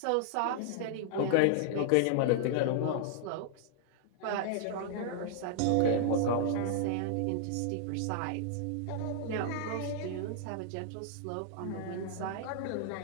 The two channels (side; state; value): both; different; correlation -0.01